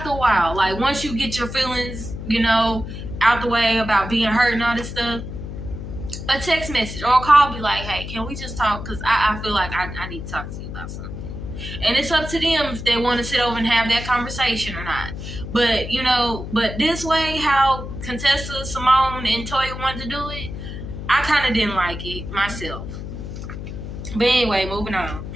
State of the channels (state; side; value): noise; left; hum, 8 dB below the sound